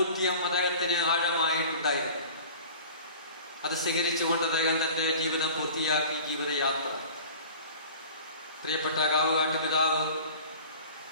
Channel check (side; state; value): both; inverted; correlation -0.42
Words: അദ്ദേഹത്തിന് ആഴമായിട്ടുണ്ടായിരുന്നു. അത് സ്വീകരിച്ചുകൊണ്ട് അദ്ദേഹം തന്റെ ജീവിതം പൂർത്തിയാക്കി ജീവിതയാത്ര. പ്രിയപ്പെട്ട കാവുകാട്ട് പിതാവ്